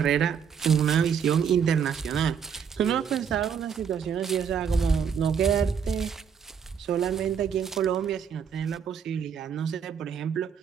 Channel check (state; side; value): quieter; left; 7.3 dB